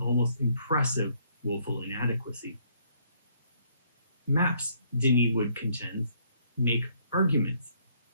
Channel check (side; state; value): both; inverted; correlation -0.67